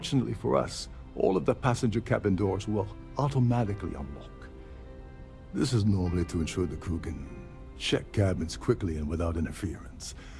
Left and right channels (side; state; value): both; identical; correlation 1.00